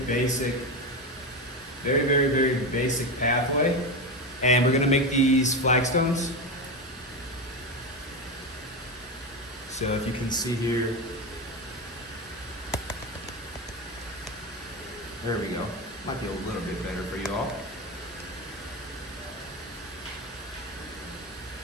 pathway. And we're gonna make these flagstones. So if you can see here, there we go. Might be a little bit better for you all.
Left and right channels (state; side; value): normal; both; correlation 0.16